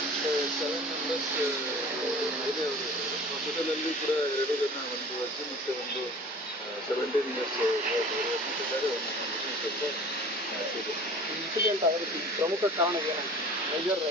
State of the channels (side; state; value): both; normal; correlation 0.43